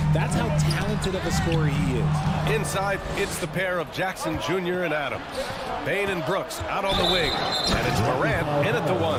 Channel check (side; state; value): both; identical; correlation 1.00